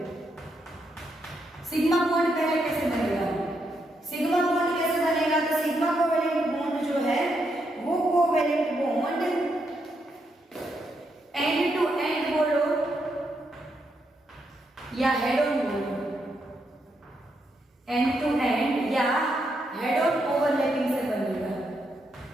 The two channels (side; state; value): both; normal; correlation 0.80